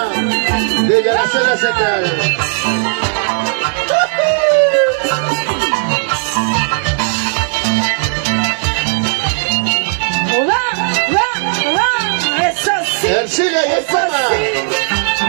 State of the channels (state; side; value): silent; left; 70 dB below the other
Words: desde la Selva Central. Eso sí. Ercilia y el Eso Poma. sí.